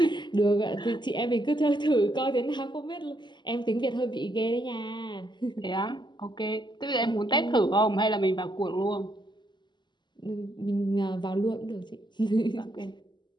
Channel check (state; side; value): late; right; 0.22 ms